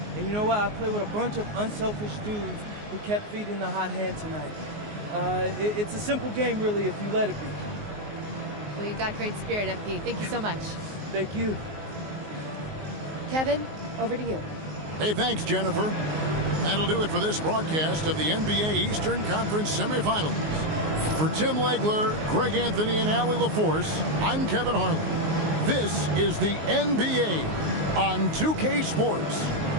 And you know what? I played with a bunch of unselfish dudes who kept feeding the hot hand tonight. It's a simple game, really, if you let it be. Well, you got great spirit, MP. Thank you so much. Thank you. Kevin, over to you. Hey, thanks, Jennifer. That'll do it for this broadcast of the NBA Eastern Conference semifinals. For Tim Legler, Greg Anthony, and Allie LaForce, I'm Kevin Harlan. This is the NBA on 2K Sports.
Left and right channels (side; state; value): left; late; 19 ms